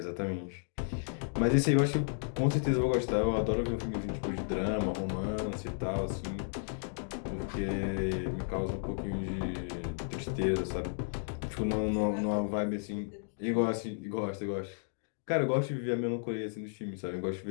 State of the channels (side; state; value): right; silent; digital silence